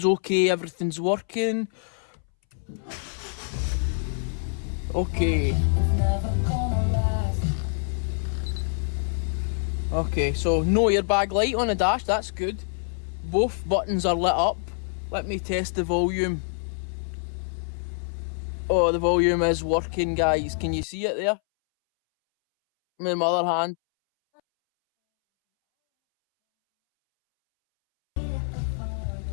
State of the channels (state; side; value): silent; right; 61 dB below the other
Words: okay, everything's working. Okay. Okay, so no airbag light on the dash, that's good. Both buttons are lit up. Let me test the volume. Oh, the volume is working, guys. Can you see it there? With my other hand.